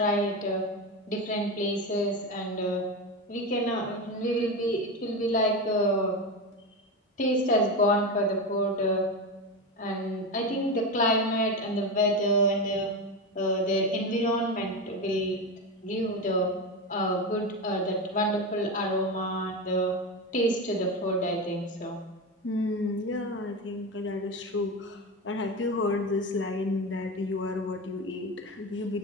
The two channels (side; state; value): both; normal; correlation 0.18